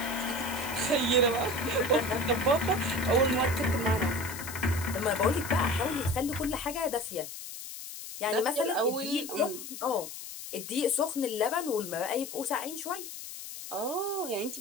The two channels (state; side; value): noise; left; hiss, 10 dB below the sound